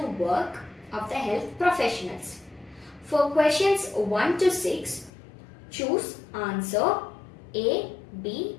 work of the health professionals. For questions 1 to 6, choose answer A, B,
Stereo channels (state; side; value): drops out; right; at 5.1 s